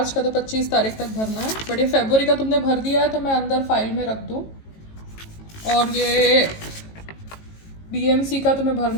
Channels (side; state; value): right; late; 18 ms